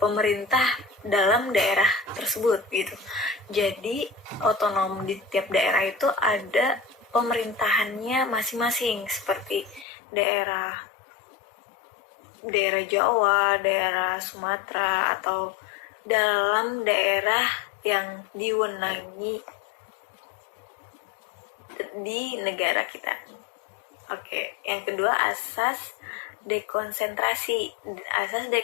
pemerintah dalam daerah tersebut gitu. Jadi otonom di tiap daerah itu ada pemerintahannya masing-masing, seperti daerah Jawa, daerah Sumatera, atau dalam daerah yang diwenangi di negara kita. Oke, yang kedua asas dekonsentrasi. Asas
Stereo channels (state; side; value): drops out; right; at 9.9 s